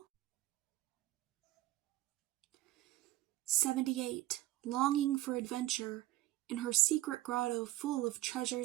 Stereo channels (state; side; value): quieter; left; 16.0 dB